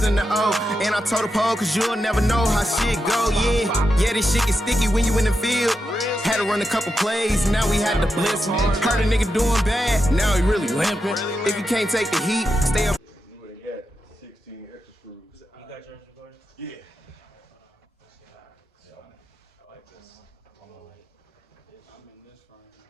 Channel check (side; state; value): both; normal; correlation 0.88